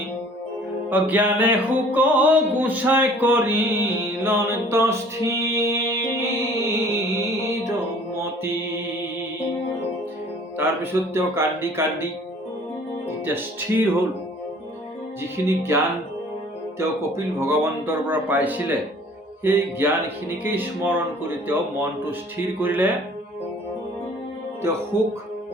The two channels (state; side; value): normal; both; correlation 0.52